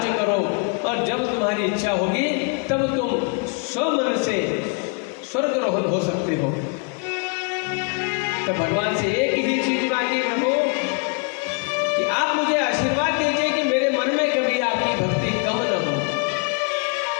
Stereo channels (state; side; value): quieter; right; 36.9 dB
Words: करो, और जब तुम्हारी इच्छा होगी तब तुम स्वमन से स्वर्गारोहण हो सकते हो। तो भगवान से एक ही चीज मांगी, प्रभु कि आप मुझे आशीर्वाद दीजिए कि मेरे मन में कभी आपकी भक्ति कम न हो।